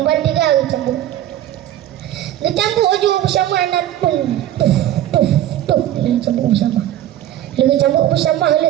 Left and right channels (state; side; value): quieter; left; 12.5 dB